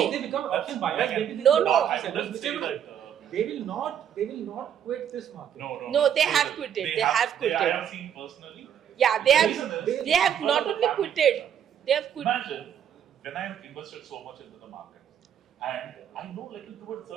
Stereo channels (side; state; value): left; quieter; 9.2 dB